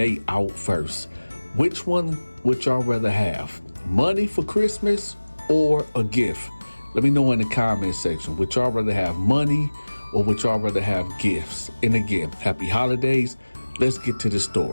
out first. Which one would y'all rather have? Money for Christmas or a gift? Let me know in the comment section. Would y'all rather have money or would y'all rather have gifts? And again, happy holidays. Let's get to the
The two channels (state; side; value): inverted; both; correlation -1.00